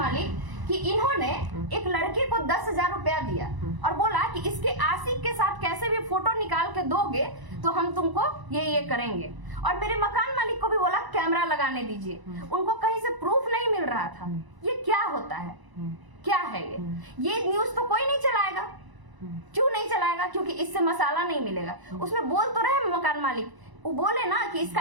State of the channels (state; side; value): late; left; 1.0 ms